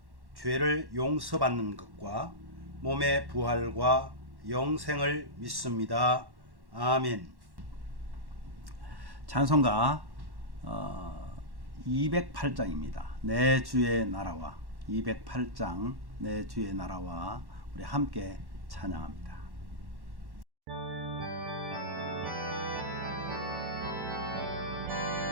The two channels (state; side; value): late; left; 1.1 ms